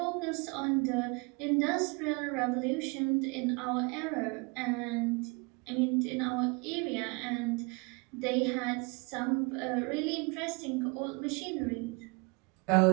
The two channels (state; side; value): quieter; left; 30.2 dB